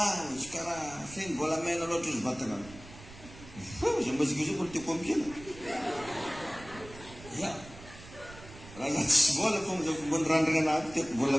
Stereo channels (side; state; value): right; noise; rumble, 18 dB below the sound